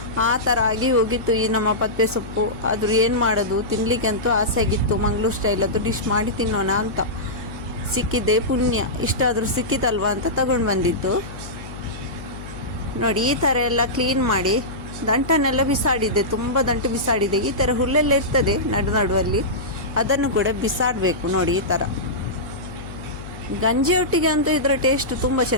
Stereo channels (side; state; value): left; noise; hum, 12 dB below the sound